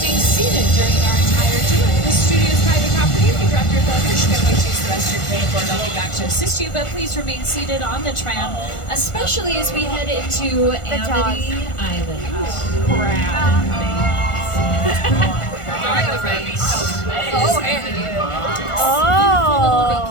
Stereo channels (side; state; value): right; late; 1.5 ms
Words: seated during our entire tour. This studio is private property. If you drop your phone, you should definitely choose the rest of your credit card. I'll be back to assist you, but please remain seated on the tram, especially as we head into Amity Island. Oh.